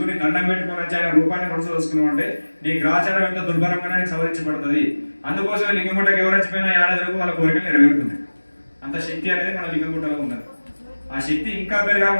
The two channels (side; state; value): both; inverted; correlation -1.00